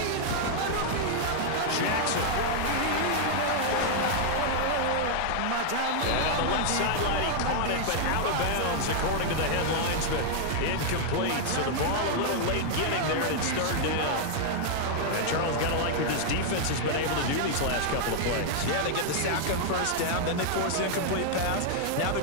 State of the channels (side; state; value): both; different; correlation 0.00